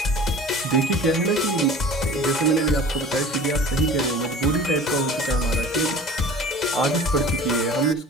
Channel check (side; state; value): both; normal; correlation 0.42